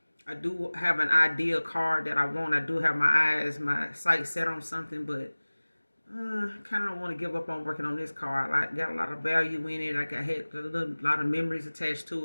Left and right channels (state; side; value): inverted; both; correlation -1.00